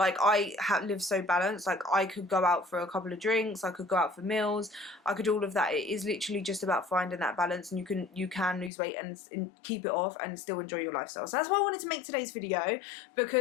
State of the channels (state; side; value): drops out; right; at 8.7 s